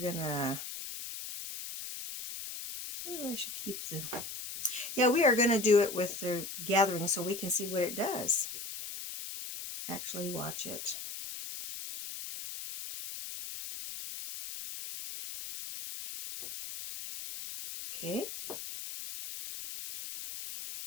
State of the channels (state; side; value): noise; left; hiss, 8 dB below the sound